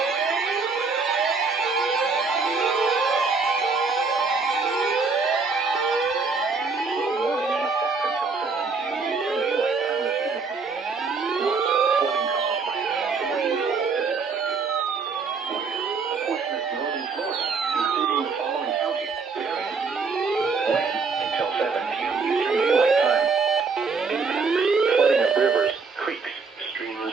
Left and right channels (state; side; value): quieter; left; 4.7 dB